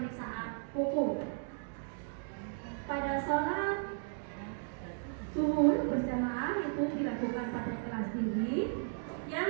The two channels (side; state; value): left; silent; digital silence